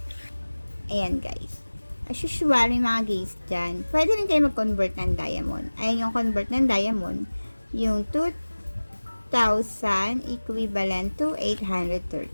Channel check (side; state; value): both; inverted; correlation -1.00